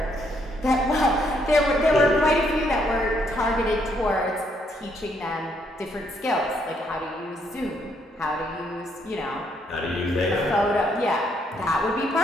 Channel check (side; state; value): both; normal; correlation 0.72